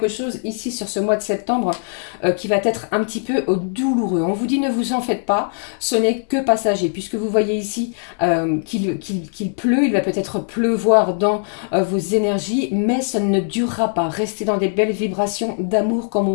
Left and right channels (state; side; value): silent; right; digital silence